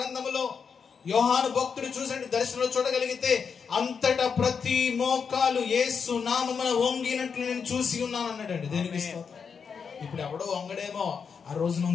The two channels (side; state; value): right; quieter; 6.2 dB